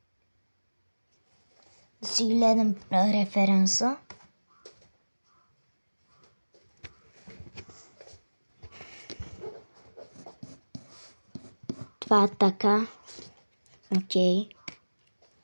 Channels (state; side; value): inverted; both; correlation -1.00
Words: Да си гледам референса. Това е така. Окей.